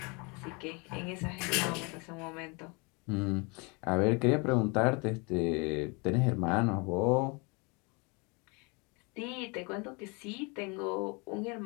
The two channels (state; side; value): quieter; right; 30.3 dB